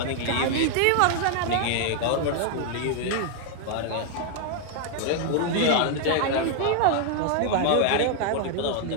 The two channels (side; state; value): both; different; correlation 0.00